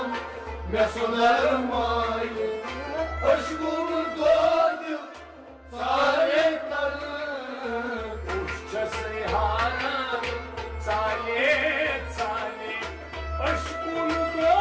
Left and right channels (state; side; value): identical; both; correlation 1.00